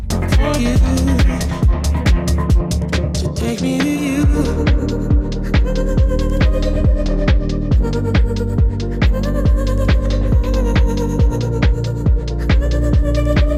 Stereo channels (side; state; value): both; identical; correlation 1.00